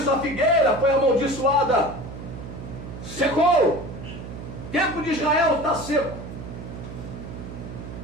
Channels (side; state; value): right; noise; hum, 11 dB below the sound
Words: a figueira foi amaldiçoada. Secou. O tempo de Israel está seco,